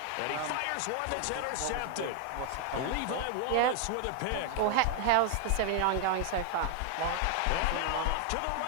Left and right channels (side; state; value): both; different; correlation 0.00